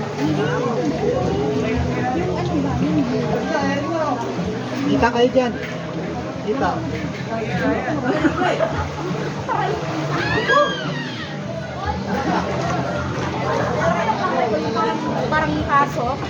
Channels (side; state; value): both; identical; correlation 1.00